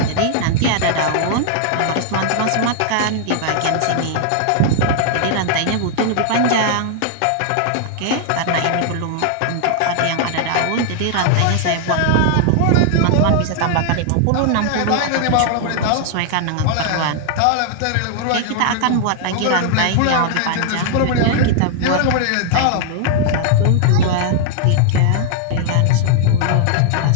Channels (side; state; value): both; different; correlation 0.00